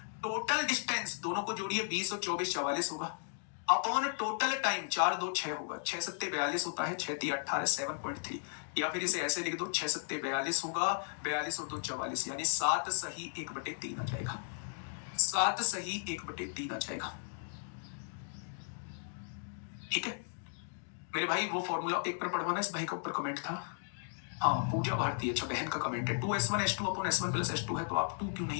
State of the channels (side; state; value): right; silent; digital silence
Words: टोटल डिस्टेंस दोनों को जोड़िए, 20 और 24 44 होगा, अपॉन टोटल टाइम 4 2 6 होगा, 6 7 42 होता है, 6 3 18 7.3, या फिर इसे ऐसे लिख दो 6 7 42 होगा, 42 और 2 44, यानी 7 सही 1/3 आ जाएगा, 7 सही 1/3 आ जाएगा। ठीक है मेरे भाई, वो फॉर्मूला एक पर पढ़वाना, इस भाई के ऊपर कमेंट था, हाँ पूजा भारती, अच्छा बहन का कमेंट है, 2s1 s2 upon s1 plus s2 है, तो आप 2 क्यों